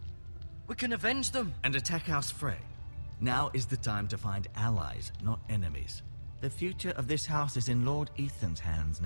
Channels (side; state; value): both; inverted; correlation -1.00